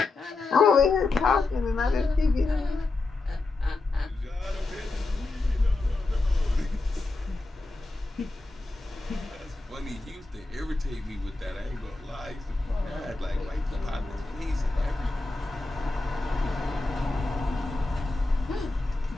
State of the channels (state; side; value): quieter; right; 3.3 dB